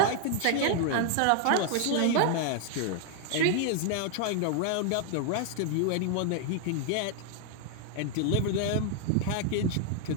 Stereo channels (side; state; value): both; different; correlation 0.00